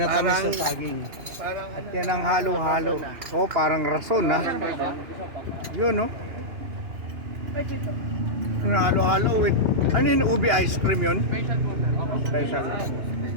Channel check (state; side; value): late; left; 2.9 ms